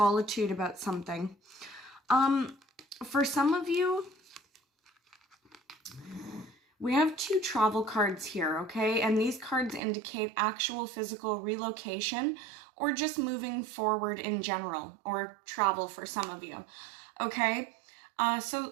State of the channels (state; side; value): drops out; left; at 9.8 s